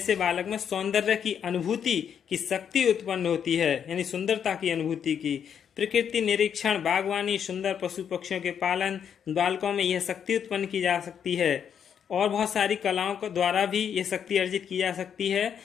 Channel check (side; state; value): right; quieter; 8.1 dB